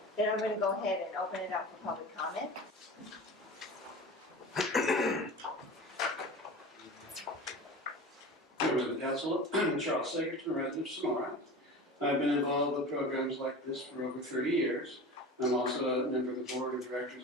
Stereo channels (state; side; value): normal; both; correlation 0.33